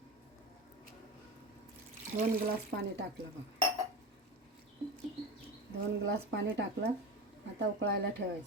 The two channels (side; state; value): both; normal; correlation 0.25